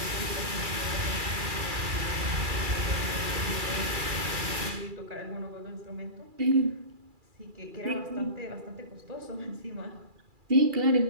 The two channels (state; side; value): late; left; 2.3 ms